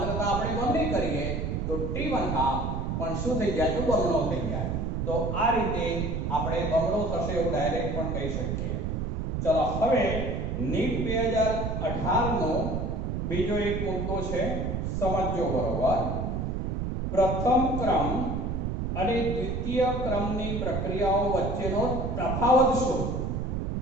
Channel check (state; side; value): noise; right; rumble, 1 dB below the sound